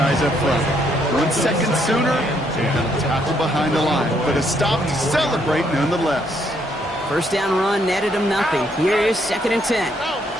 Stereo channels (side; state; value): both; normal; correlation 0.72